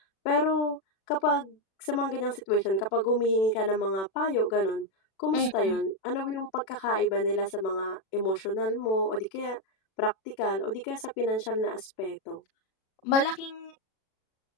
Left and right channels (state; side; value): late; right; 36 ms